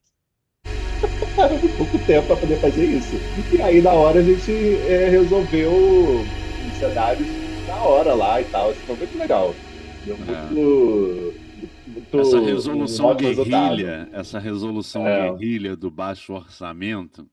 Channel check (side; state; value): both; identical; correlation 1.00